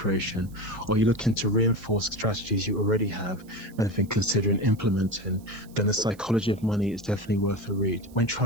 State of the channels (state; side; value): noise; right; hiss, 27 dB below the sound